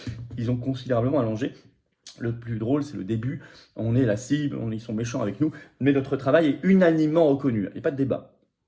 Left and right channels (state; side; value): identical; both; correlation 1.00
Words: Ils ont considérablement allongé. Le plus drôle, c'est le début. On est la cible, ils sont méchants avec nous, mais notre travail est unanimement reconnu. Il n'y a pas de débat.